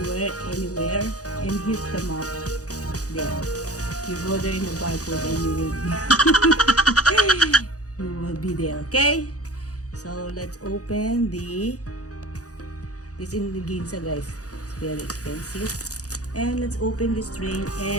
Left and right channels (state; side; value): late; right; 0.67 ms